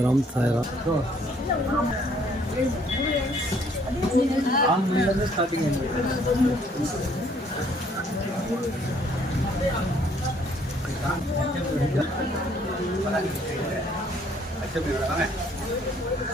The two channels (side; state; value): both; normal; correlation 0.63